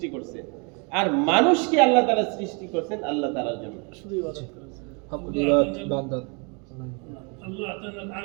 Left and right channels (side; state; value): left; quieter; 34.1 dB